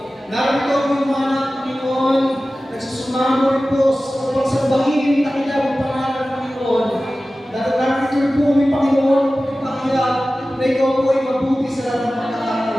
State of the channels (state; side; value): normal; both; correlation 0.96